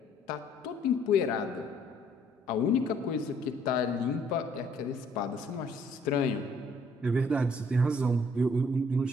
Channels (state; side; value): normal; both; correlation 0.63